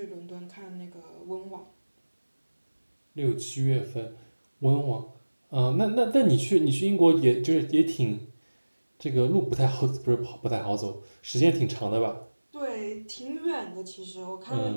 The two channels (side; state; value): both; inverted; correlation -1.00